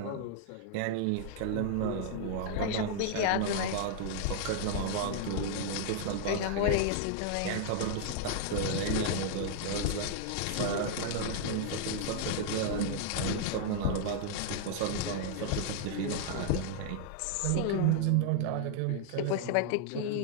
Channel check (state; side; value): different; both; correlation 0.00